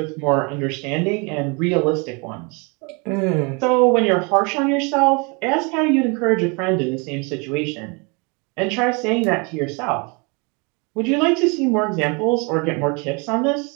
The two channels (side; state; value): left; quieter; 31.1 dB